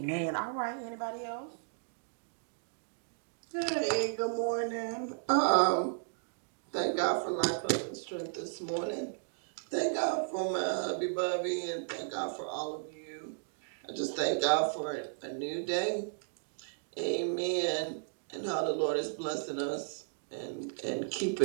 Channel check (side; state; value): left; silent; digital silence